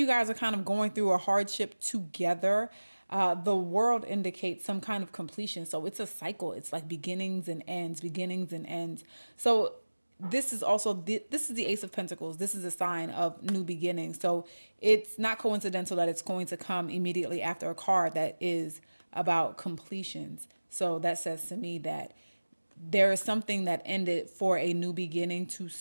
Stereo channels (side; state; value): both; inverted; correlation -1.00